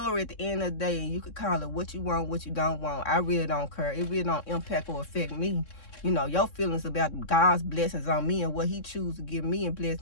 at the end of the day. And you could call it what you want, what you don't want. I really don't care. It really don't impact or affect me. You know, your feelings about God's blessings on me and what he chooses to give me and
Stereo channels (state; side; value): late; right; 3.7 ms